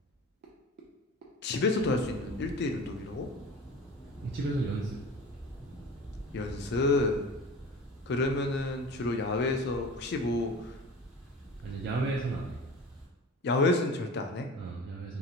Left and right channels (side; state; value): both; normal; correlation 0.37